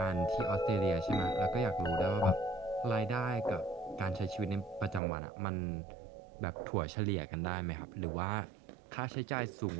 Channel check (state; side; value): drops out; left; at 5.0 s